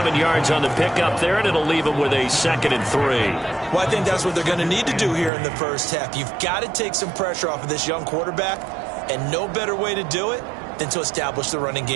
yards on the pickup there, and it'll leave him with a 2nd and 3. Well, I think that's what they're going to need to do here in the first half. You've got to take some pressure off of this young quarterback, and no better way to do it than to establish the running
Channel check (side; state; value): left; drops out; at 5.3 s